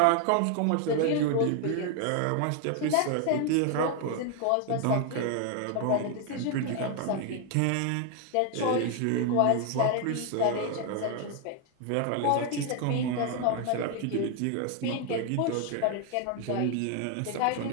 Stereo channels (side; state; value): both; different; correlation 0.00